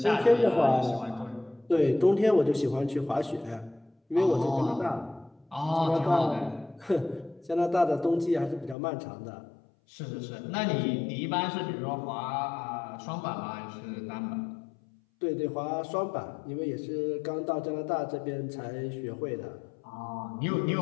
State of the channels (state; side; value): drops out; right; at 8.8 s